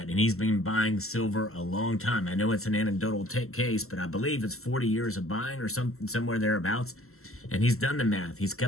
and he's been buying silver a long time. I know it's an anecdotal case, but I believe it's 40 years of buying or somewhere thereabouts. And he's done the math. He's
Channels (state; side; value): late; right; 0.63 ms